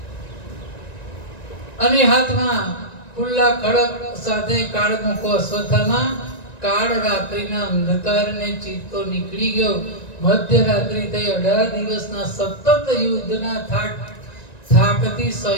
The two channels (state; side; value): late; right; 1.9 ms